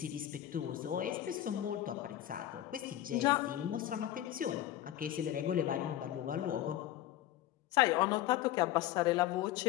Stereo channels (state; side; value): quieter; right; 12.9 dB